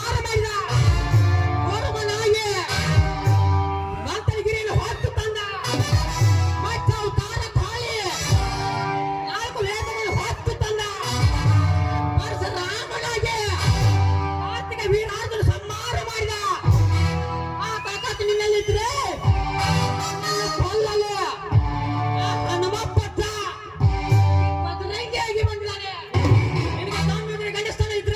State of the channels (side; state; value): both; identical; correlation 1.00